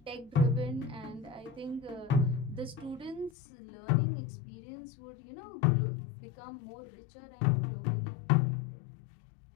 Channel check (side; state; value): right; drops out; at 3.3 s